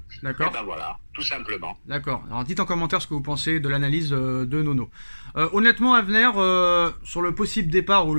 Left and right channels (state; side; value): inverted; both; correlation -1.00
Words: D'accord. Et voilà, tout simplement. D'accord. Alors dites en commentaire ce que vous pensez de l'analyse de Nono. Honnêtement, Avner, sur le possible départ ou